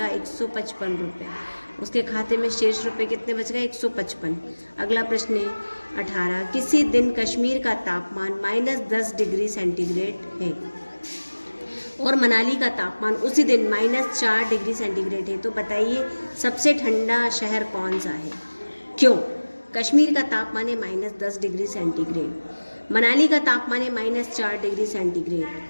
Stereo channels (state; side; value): inverted; both; correlation -1.00